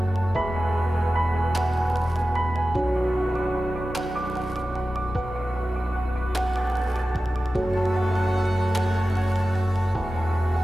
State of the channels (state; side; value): normal; both; correlation 0.94